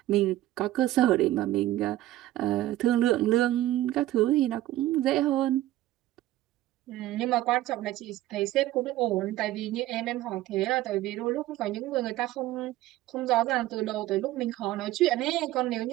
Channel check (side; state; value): left; quieter; 15.2 dB